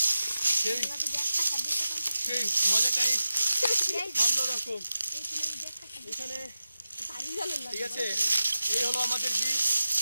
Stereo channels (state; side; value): inverted; both; correlation -0.92